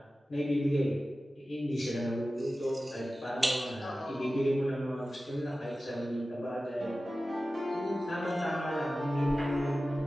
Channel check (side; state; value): both; normal; correlation 0.95